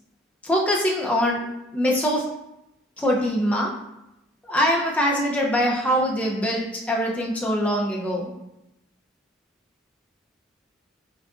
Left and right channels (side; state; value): both; normal; correlation 0.53